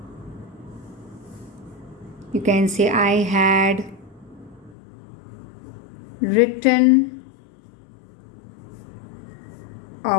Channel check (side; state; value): right; drops out; at 4.8 s